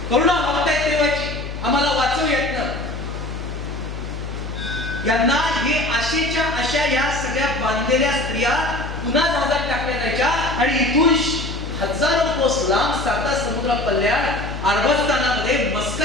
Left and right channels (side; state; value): left; noise; hum, 8 dB below the sound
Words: करुणा मागतायत देवाची, आम्हाला वाचवू येत ना. यांना हे आशेच्या अशा या सगळ्या बांधलेल्या स्त्रिया पुन्हा जहाजात टाकल्या जायच्या आणि इथून हजारो कोस लांब साता समुद्रा पल्ल्यात अरबस्तानामध्ये